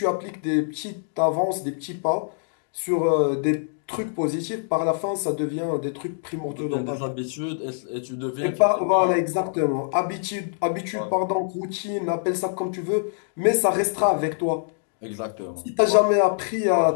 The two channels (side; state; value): right; silent; digital silence